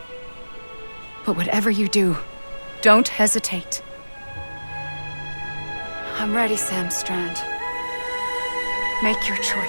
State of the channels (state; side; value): inverted; both; correlation -1.00